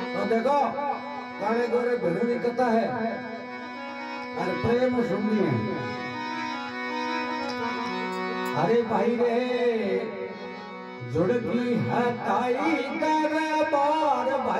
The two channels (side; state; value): both; identical; correlation 1.00